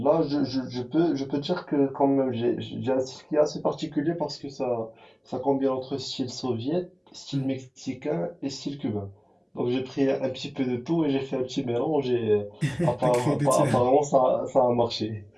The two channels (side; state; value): both; identical; correlation 1.00